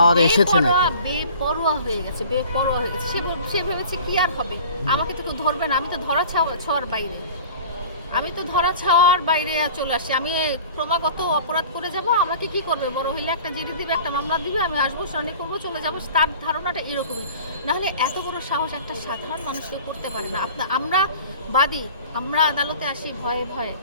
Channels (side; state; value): both; inverted; correlation -0.42